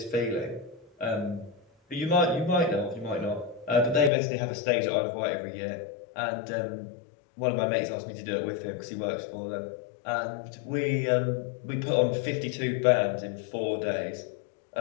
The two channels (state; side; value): drops out; right; at 4.1 s